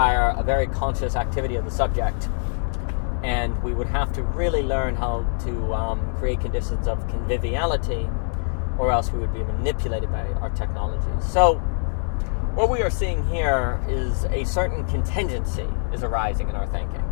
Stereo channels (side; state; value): right; silent; digital silence